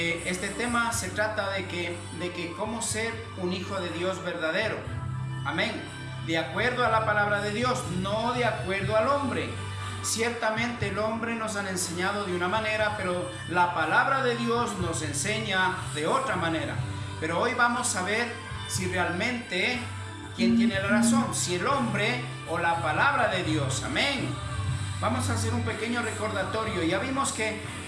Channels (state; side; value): identical; both; correlation 1.00